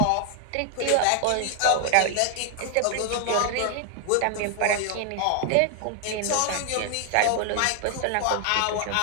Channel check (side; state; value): both; different; correlation 0.00